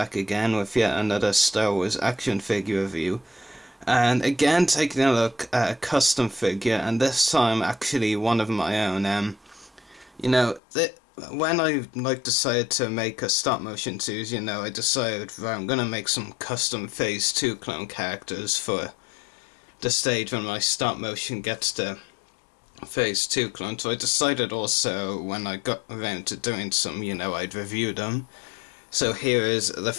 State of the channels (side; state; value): right; drops out; at 10.6 s